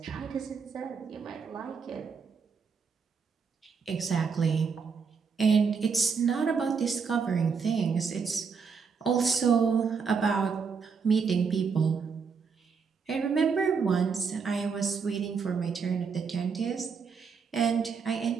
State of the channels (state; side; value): quieter; left; 5.7 dB